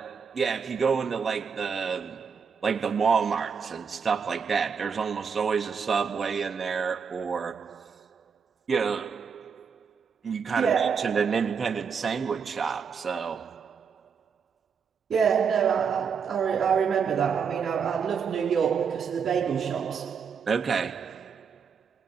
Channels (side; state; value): left; quieter; 6.3 dB